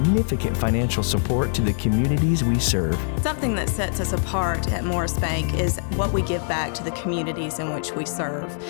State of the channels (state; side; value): silent; right; digital silence